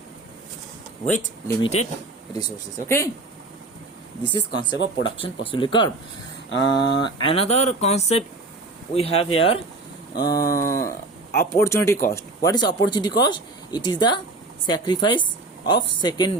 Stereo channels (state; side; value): quieter; left; 3.2 dB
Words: with limited resources. Okay, this is concept of production possibility curve. Another concept we have here, opportunity cost. What is opportunity cost? It is the sacrifice of